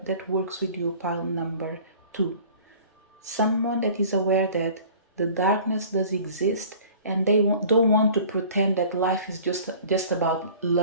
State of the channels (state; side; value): inverted; both; correlation -0.46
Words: that works with you, pile number 2. Someone that is aware that the darkness does exist and they don't want to pretend that life is just about